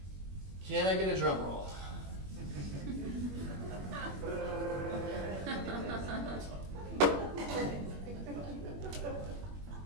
Can I get a drum roll?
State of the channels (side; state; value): left; late; 21 ms